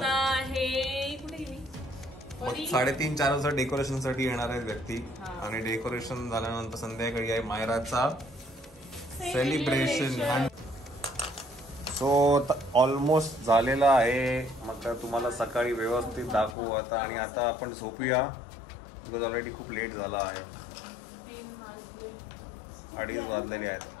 आहे कुठे गेली? मग 3:30-4 वाजता डेकोरेशन साठी येणार आहेत व्यक्ती, आणि डेकोरेशन झाल्यानंतर संध्याकाळी आहे मायराचा सेलिब्रेशन. सो ऑलमोस्ट झालेला आहे. मग तुम्हाला सकाळी व्यवस्थित दाखवू आता. आणि आता आपण झोपूया, बिकॉज ऑलरेडी खूप लेट झाला आहे, 2:30 वाजलेले आहेत.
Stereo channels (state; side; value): drops out; right; at 16.6 s